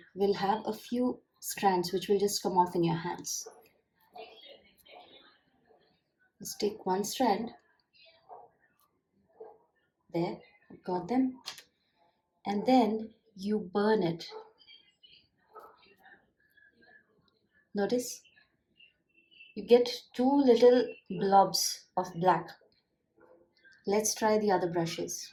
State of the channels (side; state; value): both; identical; correlation 1.00